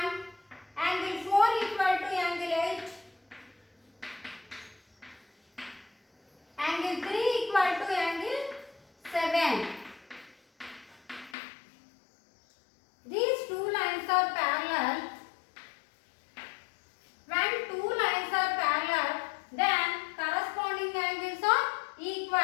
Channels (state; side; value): drops out; right; at 11.4 s